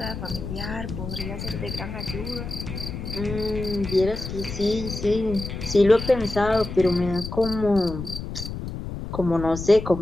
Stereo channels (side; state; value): left; noise; rumble, 7 dB below the sound